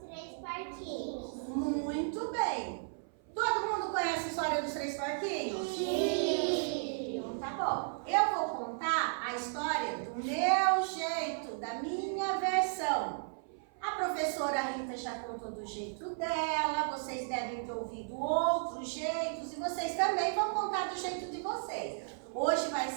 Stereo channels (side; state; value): left; silent; 55 dB below the other